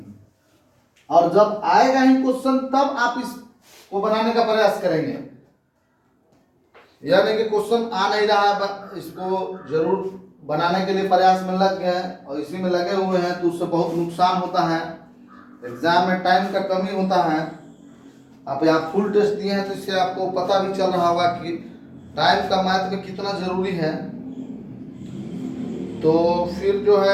और जब आएगा ही क्वेश्चन तब आप इसको बनाने का प्रयास करेंगे, यह नहीं कि क्वेश्चन आ नहीं रहा है, इसको जरूर बनाने के लिए प्रयास में लग गए और इसी में लगे हुए हैं, तो उससे बहुत नुकसान होता है। एग्जाम में टाइम का कमी होता है। आप यहाँ फुल टेस्ट दिए हैं तो इससे आपको पता भी चल रहा होगा कि टाइम का मैथ में कितना जरूरी है। तो फिर जो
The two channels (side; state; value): both; identical; correlation 1.00